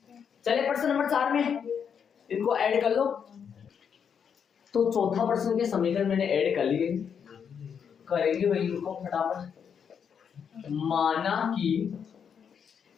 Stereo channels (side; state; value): right; quieter; 7.3 dB